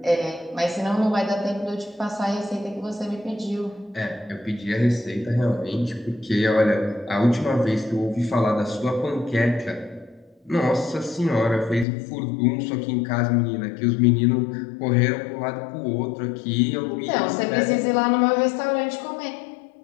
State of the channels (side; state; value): right; drops out; at 11.9 s